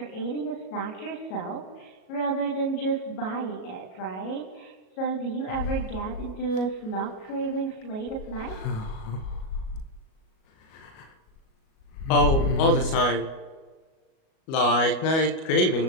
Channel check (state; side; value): late; right; 37 ms